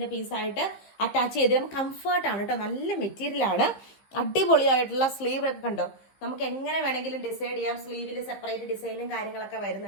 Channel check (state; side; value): late; right; 15 ms